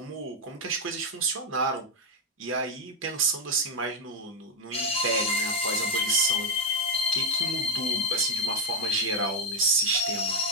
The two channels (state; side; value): normal; both; correlation 0.05